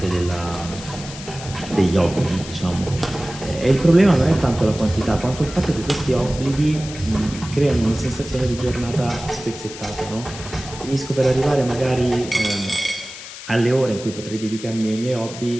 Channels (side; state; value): left; noise; hiss, 13 dB below the sound